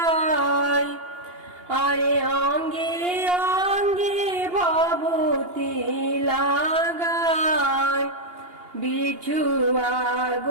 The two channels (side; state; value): left; late; 2.8 ms